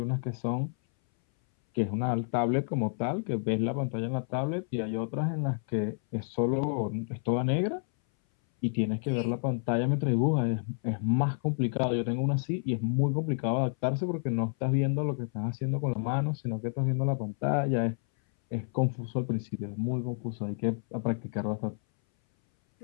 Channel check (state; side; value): silent; right; 58 dB below the other